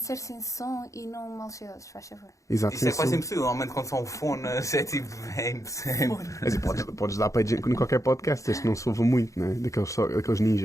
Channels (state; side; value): late; right; 0.15 ms